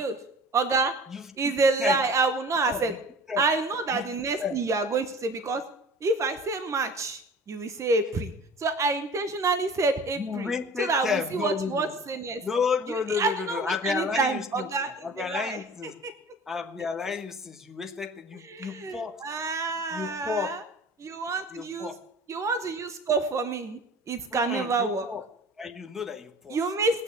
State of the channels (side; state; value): both; normal; correlation 0.42